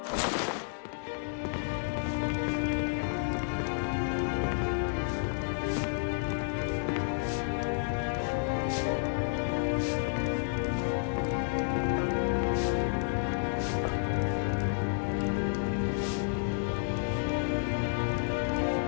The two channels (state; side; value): silent; right; digital silence